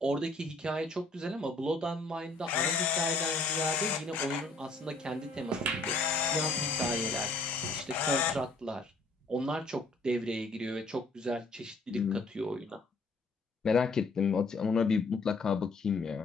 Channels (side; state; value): right; quieter; 3.3 dB